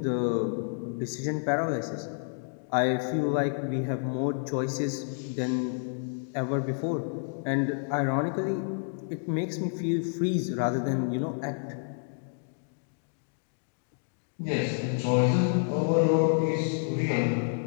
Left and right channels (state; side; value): silent; right; digital silence